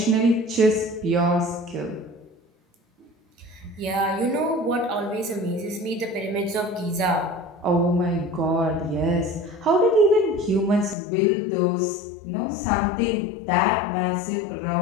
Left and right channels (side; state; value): right; drops out; at 11.0 s